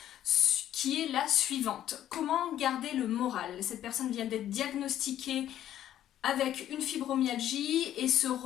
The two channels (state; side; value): quieter; right; 11.8 dB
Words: qui est la suivante. Comment garder le moral? Cette personne vient d'être diagnostiquée avec une fibromyalgie et se